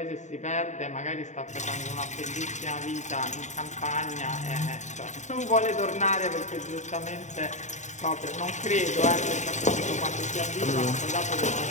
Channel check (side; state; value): right; late; 0.34 ms